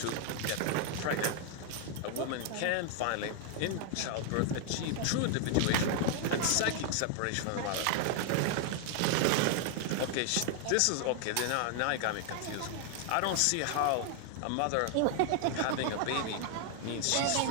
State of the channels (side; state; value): both; different; correlation 0.00